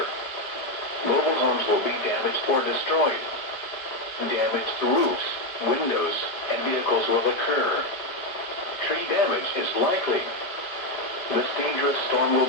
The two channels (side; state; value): right; late; 5.0 ms